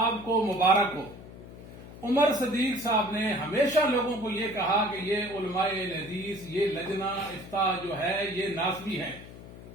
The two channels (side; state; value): left; noise; hum, 16 dB below the sound